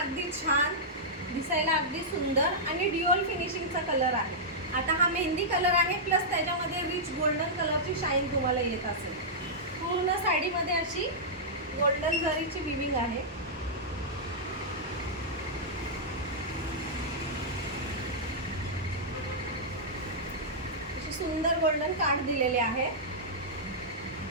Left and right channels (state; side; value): normal; both; correlation -0.11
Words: अगदी छान, दिसायला अगदी सुंदर आणि ड्युअल फिनिशिंगचा कलर आहे. आता हा मेहंदी कलर आहे, प्लस त्याच्यामध्ये रिच गोल्डन कलरची शाईन तुम्हाला येत असेल. पूर्ण साडीमध्ये अशी गोल्डन जरीची विविंग आहे. अशी सुंदर गोल्डन काठ दिलेले आहे.